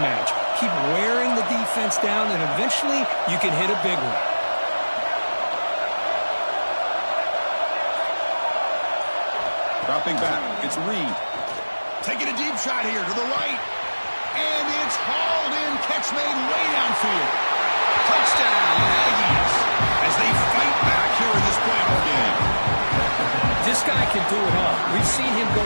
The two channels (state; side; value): inverted; both; correlation -1.00